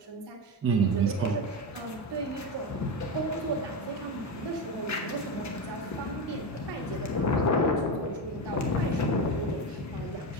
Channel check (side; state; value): both; normal; correlation 0.17